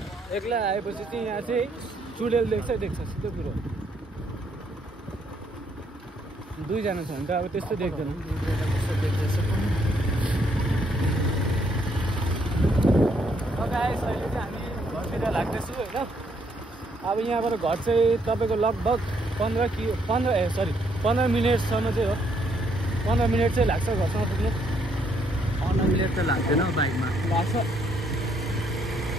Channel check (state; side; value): normal; both; correlation 0.71